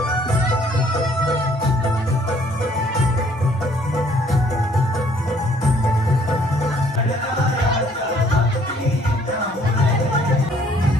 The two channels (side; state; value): both; normal; correlation 0.61